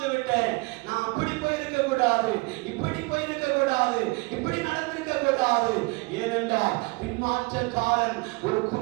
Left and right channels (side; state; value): left; quieter; 27.0 dB